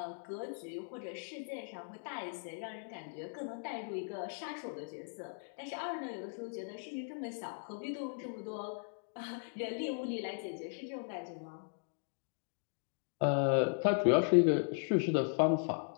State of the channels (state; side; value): silent; right; digital silence